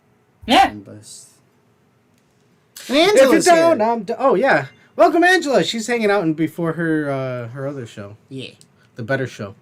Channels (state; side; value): identical; both; correlation 1.00